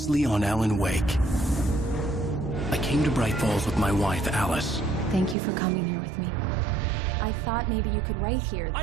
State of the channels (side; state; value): left; drops out; at 5.4 s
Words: on Alan Wake. I came to Bright Falls with my wife, Alice. Thank you for coming here with me. I thought maybe you could write here. I